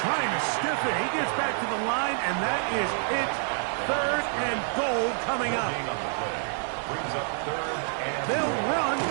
trying to stiff it. He gets back to the line, and that is it. 3rd and goal coming up. Brings up 3rd and They'll run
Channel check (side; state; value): left; silent; 60 dB below the other